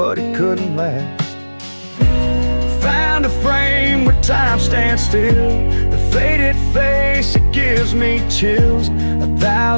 it couldn't last. Found a frame where time stands still, the faded face, it gives me chills.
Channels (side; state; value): both; inverted; correlation -1.00